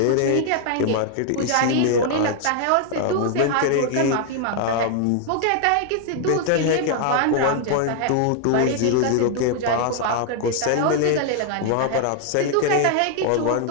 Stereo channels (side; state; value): both; different; correlation 0.00